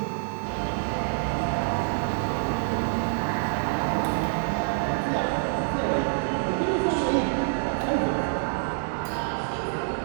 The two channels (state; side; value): silent; left; digital silence